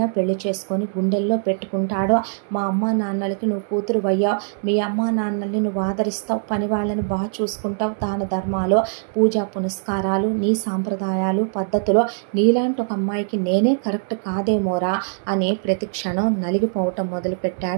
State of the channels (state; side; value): silent; left; 64 dB below the other